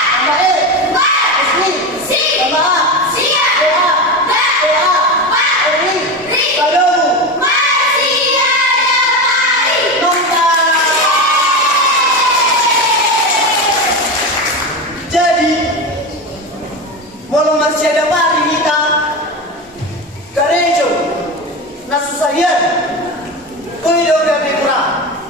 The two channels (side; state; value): both; normal; correlation 0.21